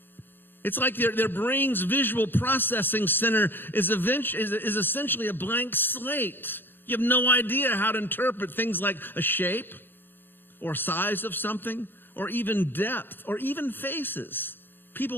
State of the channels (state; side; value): late; right; 0.098 ms